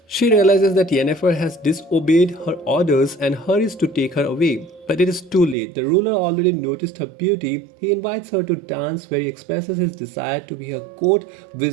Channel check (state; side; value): drops out; left; at 5.6 s